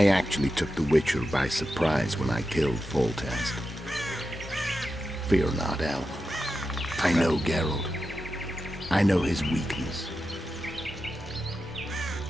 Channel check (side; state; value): both; normal; correlation 0.90